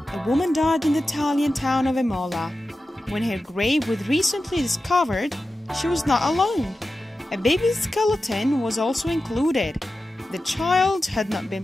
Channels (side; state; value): both; normal; correlation 0.93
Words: a woman died in the Italian town of Imola. When her grave was recently discovered, she was not alone. A baby's skeleton was also included. The child had not